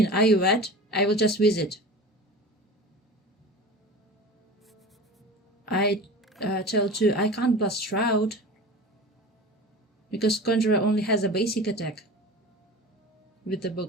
are you wet? I will just visit. I tell 2 I can't blast Shroud because Conjurer only has a basic attack with the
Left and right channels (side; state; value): both; normal; correlation 0.34